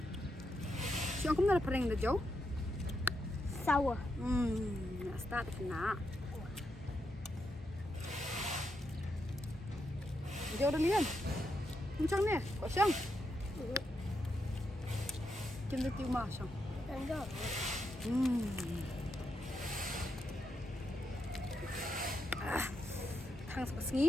Siang kamu dah pering dah jauh. Sour. Start kena. Jauh dah ni kan? Macam ni, kau siang. Kita tiu mah siang. Enggak. Thang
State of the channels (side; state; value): both; normal; correlation 0.82